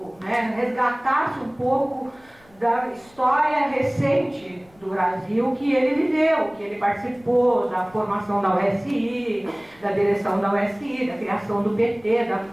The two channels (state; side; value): noise; left; rumble, 29 dB below the sound